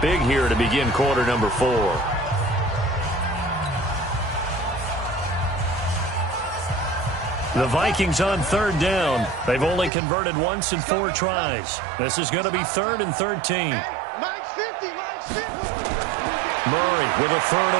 big here to begin quarter number 4. The Vikings on 3rd down. They've only converted once in 4 tries. This is going to be 3rd and 13. Mike's 50. Murray with a 3rd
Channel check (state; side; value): drops out; left; at 9.9 s